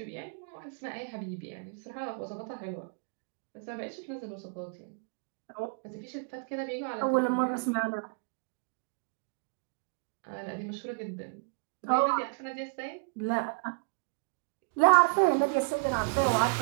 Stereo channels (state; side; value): quieter; left; 34.2 dB